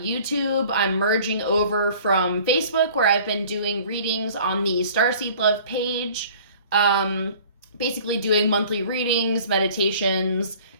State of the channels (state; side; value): inverted; both; correlation -0.49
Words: I'm merging over from Facebook, where I've been doing readings on the Starseed Love page. Basically doing monthly readings, meditations,